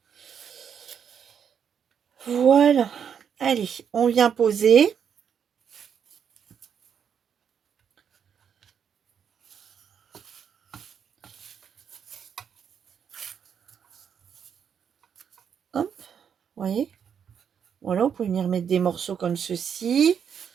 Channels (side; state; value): left; quieter; 7.8 dB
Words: Voilà. Allez, on vient poser. Hop, vous voyez. Voilà, vous pouvez venir mettre des morceaux comme ceci.